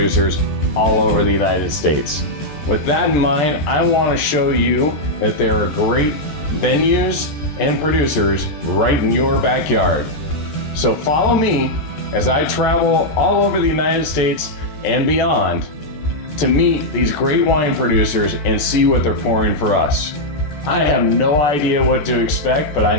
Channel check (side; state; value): right; late; 14 ms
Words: all over the United States. With that in mind, I wanna show you that there are great venues and producers right in your backyard. So follow me as I travel all over the United States and beyond to meet these great wine producers and see what they're pouring for us. I have no idea what to expect, but